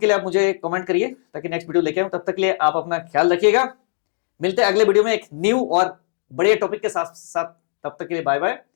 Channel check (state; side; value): silent; right; digital silence